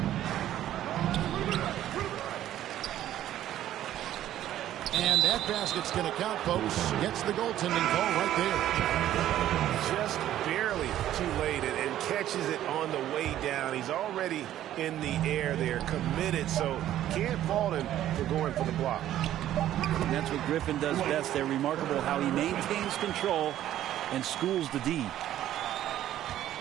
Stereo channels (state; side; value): quieter; left; 12.4 dB